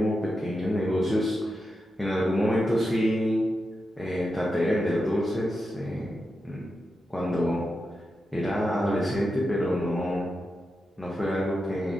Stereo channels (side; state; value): both; normal; correlation 0.88